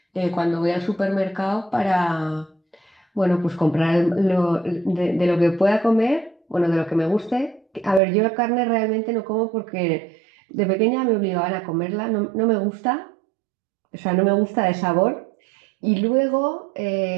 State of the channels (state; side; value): drops out; left; at 8.0 s